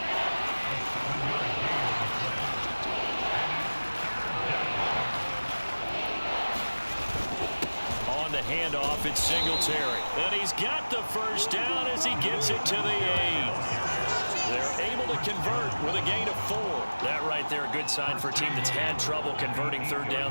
On the handoff, it's Singletary. And he's got the 1st down as he gets it to the 8. They're able to convert with a gain of 4. That right there, a good sign for a team that's had trouble converting 3rd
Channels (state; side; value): inverted; both; correlation -1.00